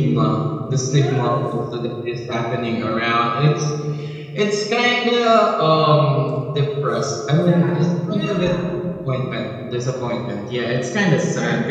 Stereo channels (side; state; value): both; identical; correlation 1.00